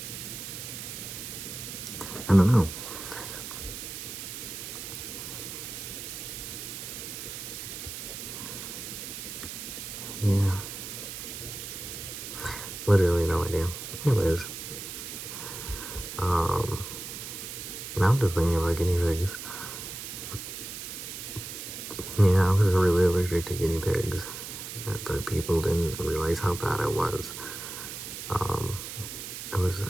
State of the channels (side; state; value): right; noise; hiss, 8 dB below the sound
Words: I don't know. Yeah. Literally no idea. Anyways. Now I'm just thinking about guinea pigs. Yeah, I was really allergic to guinea pigs, but people didn't realize how bad it was. It was